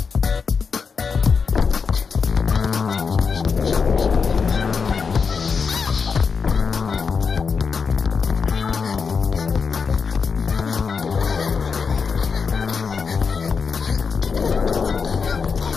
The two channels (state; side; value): quieter; right; 5.5 dB